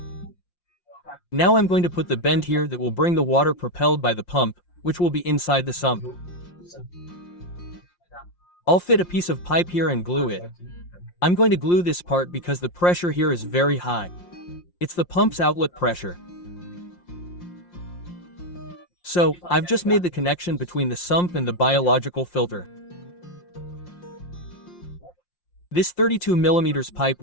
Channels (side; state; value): right; late; 5.7 ms